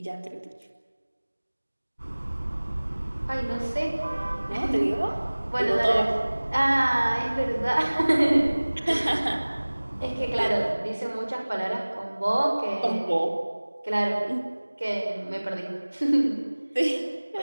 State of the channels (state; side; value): inverted; both; correlation -1.00